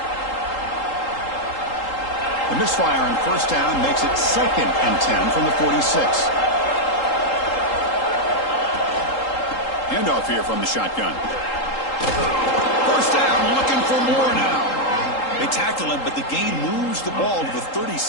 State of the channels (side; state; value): right; late; 3.8 ms